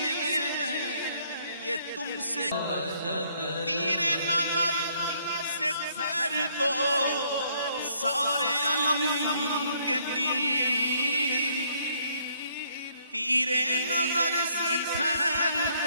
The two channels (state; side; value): inverted; both; correlation -0.67